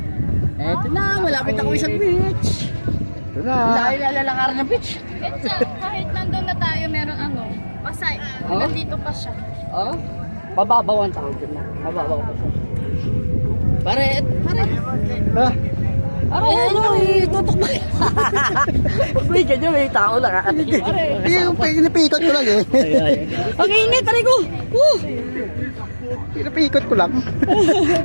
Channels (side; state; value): both; inverted; correlation -1.00